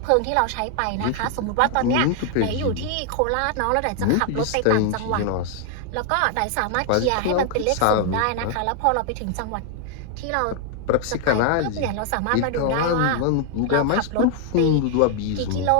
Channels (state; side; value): different; both; correlation 0.00